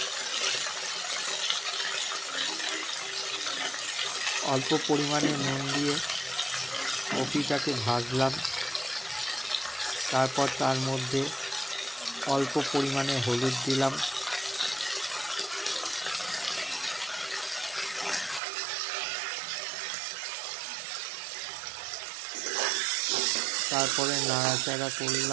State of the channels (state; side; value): drops out; left; at 18.4 s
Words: অল্প পরিমাণে নুন দিয়ে কপিটাকে ভাজলাম। তারপর তার মধ্যে অল্প পরিমাণে হলুদ দিলাম, তারপরে নাড়াচাড়া